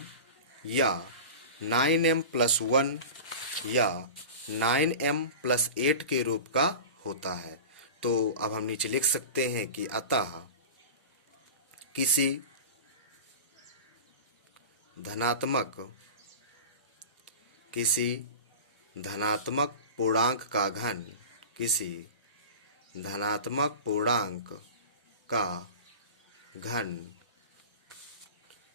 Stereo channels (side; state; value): both; inverted; correlation -0.32